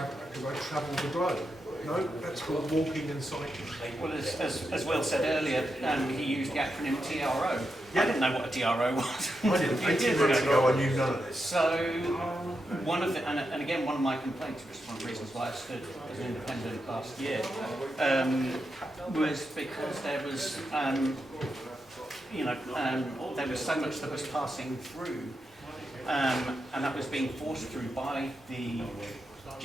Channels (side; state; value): both; normal; correlation 0.86